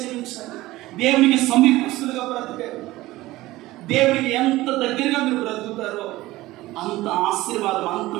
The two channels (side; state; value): left; quieter; 17.9 dB